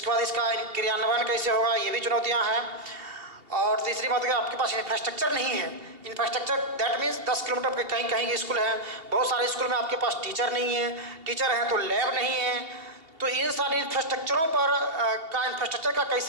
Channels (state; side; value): late; left; 2.9 ms